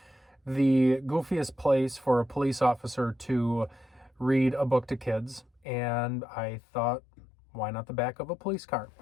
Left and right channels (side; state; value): right; drops out; at 5.6 s